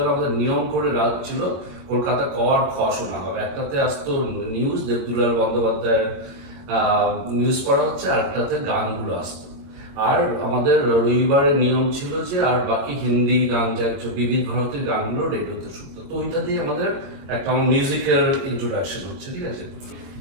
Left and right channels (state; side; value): late; left; 22 ms